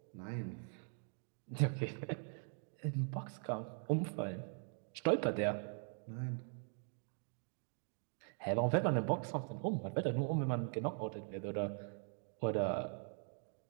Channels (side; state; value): left; silent; 50 dB below the other